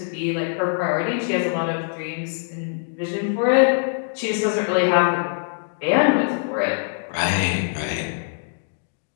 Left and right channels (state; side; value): silent; right; digital silence